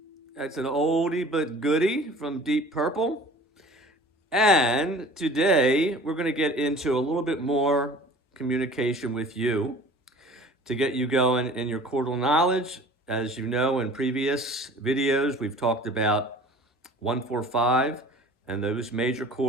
that's an oldie but goodie from Deep Purple. And today we're going to get into a little bit more communication with you to get you going in your chordal knowledge. As you know, in previous videos, we've talked about 1, 4, 5 and those major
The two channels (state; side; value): normal; both; correlation 0.45